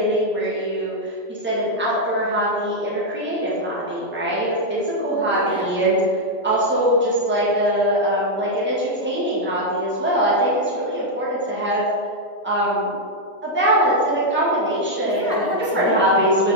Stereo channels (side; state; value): both; normal; correlation -0.02